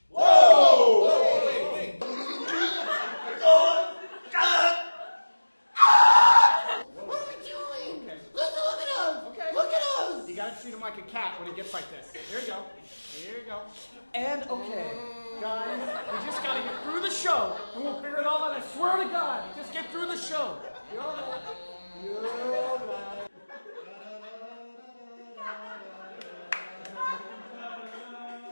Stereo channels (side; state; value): both; inverted; correlation -1.00